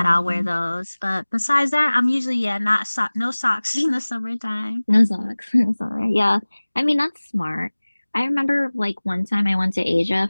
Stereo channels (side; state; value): both; inverted; correlation -1.00